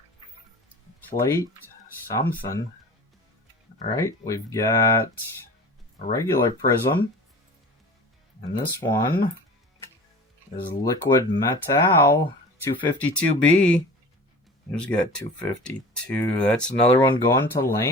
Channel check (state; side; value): normal; both; correlation 0.39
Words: plate, something. Alright, we've got a regular prism. And this one is liquid metal 252B. Who's got 252? That's another one going to